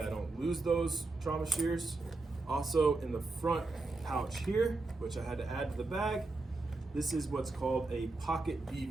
I don't lose those trauma shears. Also in the front pouch here, which I had to add to the bag, this is what's called a pocket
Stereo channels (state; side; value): quieter; left; 3.3 dB